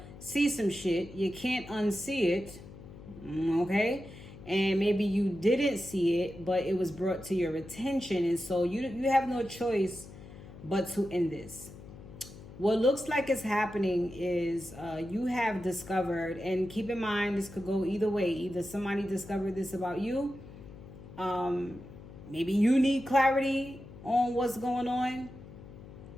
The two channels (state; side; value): noise; left; hum, 16 dB below the sound